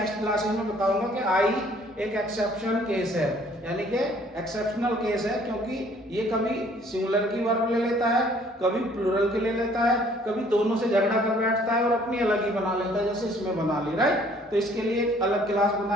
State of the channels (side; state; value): both; normal; correlation 0.59